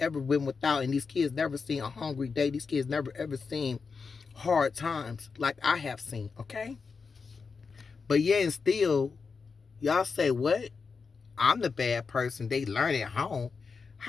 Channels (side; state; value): right; quieter; 5.0 dB